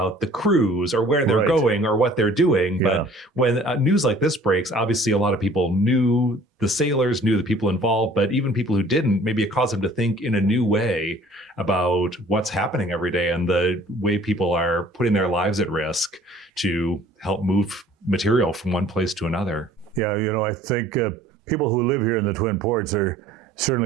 the crews or where they're going or what they're doing. Yeah. But when news like this breaks, obviously a lot of people knew the sailors, knew the people involved, but even people who didn't, maybe it caused them to think in a new way about what's happening every day and the way people are putting their lives at risk to help move material from one place to another. Yeah, I think people who live here in the Twin Ports are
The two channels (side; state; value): both; normal; correlation 0.52